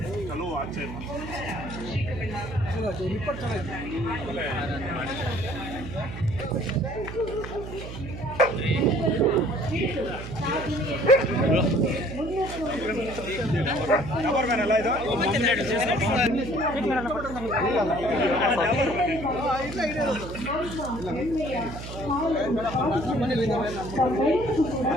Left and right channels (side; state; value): right; noise; hum, 10 dB below the sound